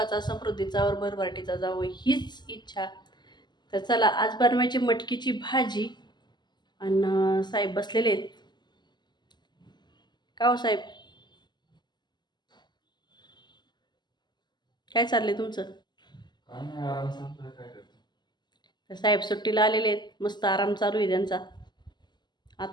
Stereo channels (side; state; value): right; late; 0.21 ms